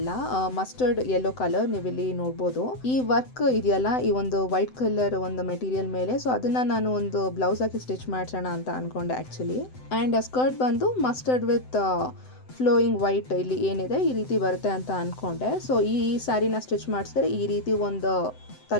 ಮಸ್ಟರ್ಡ್ ಯೆಲ್ಲೋ ಕಲರ್ ನೀವಿಲ್ಲಿ ನೋಡ್ಬೋದು. ಈ ವರ್ಕ್ ಇದೆಯಲ್ಲ, ಈ ಒಂದು ವೈಟ್ ಕಲರ್ ಒಂದು ಮೆಟೀರಿಯಲ್ ಮೇಲೆ, ಸೊ ಅದನ್ನ ನಾನು ಒಂದು ಬ್ಲೌಸ್ ಹಾಕಿ ಸ್ಟಿಚ್ ಮಾಡ್ಸೋಣ ಅಂತ ಅನ್ಕೊಂಡೆ ಆಕ್ಚುಲಿ. ಅಂಡ್ ಸ್ಕರ್ಟ್ ಬಂದು ಮಸ್ಟರ್ಡ್ ವಿತ್ ಫ್ಲೋಯಿಂಗ್ ವೈಟ್ ಇಲ್ಲಿ ಏನಿದೆ ಈ ರೀತಿ ಬರುತ್ತೆ ಅಂತ ಅನ್ಕೊಂಡೆ. ಸೊ ಈ ಸ್ಯಾರಿನ ಸ್ಟಿಚ್ ಮಾಡಿಸಿದ್ರೆ ಈ ರೀತಿ ಒಂದು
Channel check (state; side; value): late; right; 7.8 ms